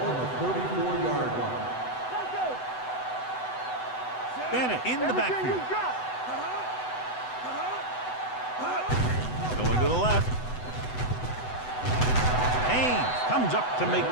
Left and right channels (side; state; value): right; late; 8.0 ms